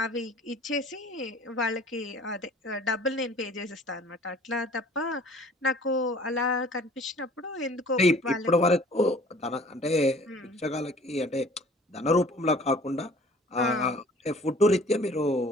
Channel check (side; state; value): both; normal; correlation 0.51